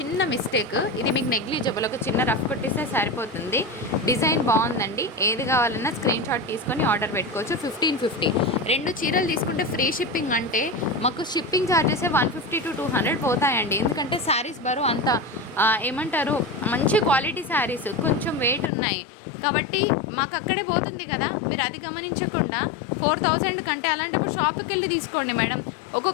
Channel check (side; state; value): right; drops out; at 18.7 s